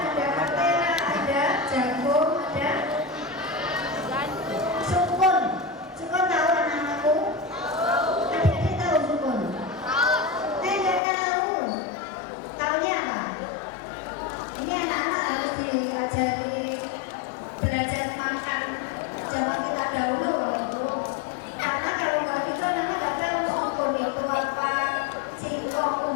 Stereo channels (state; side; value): drops out; right; at 11.0 s